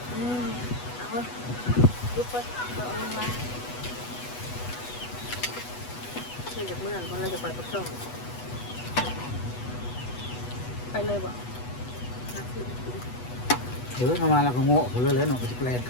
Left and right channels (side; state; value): right; late; 8.2 ms